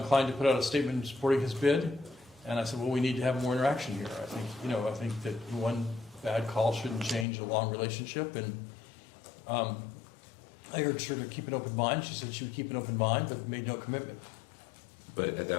to put out a statement supporting his bid, and I said, well, we need to have more interaction here. I think that one bad call shouldn't change a long relationship, and I urged her to keep an open mind. She said she would keep an open mind, but made no commitment. But at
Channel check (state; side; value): drops out; right; at 7.2 s